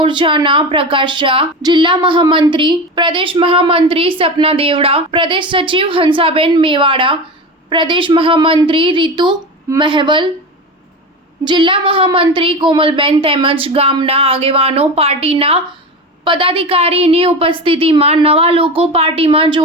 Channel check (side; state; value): both; normal; correlation 0.25